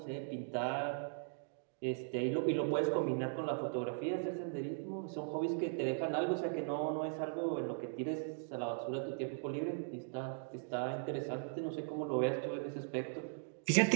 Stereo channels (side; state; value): left; silent; digital silence